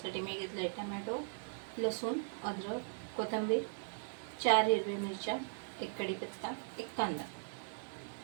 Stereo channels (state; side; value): silent; left; digital silence